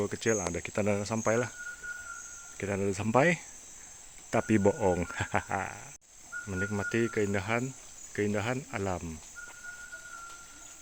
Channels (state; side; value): identical; both; correlation 1.00